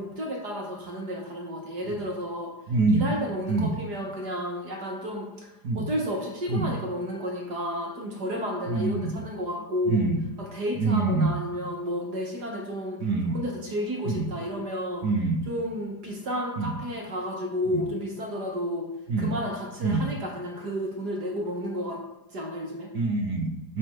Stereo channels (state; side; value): late; left; 4.9 ms